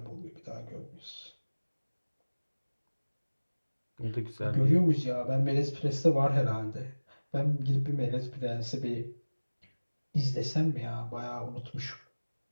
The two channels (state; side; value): inverted; both; correlation -1.00